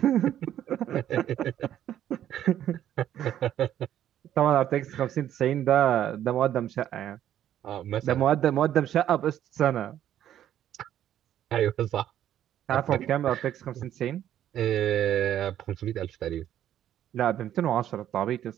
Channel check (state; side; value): quieter; left; 11.2 dB